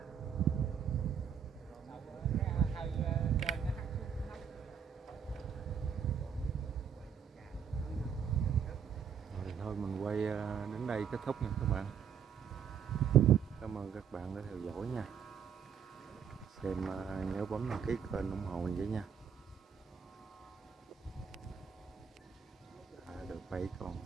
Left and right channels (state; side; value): quieter; left; 7.5 dB